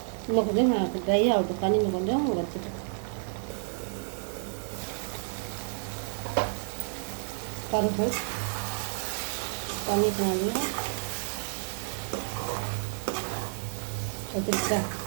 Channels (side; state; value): left; silent; digital silence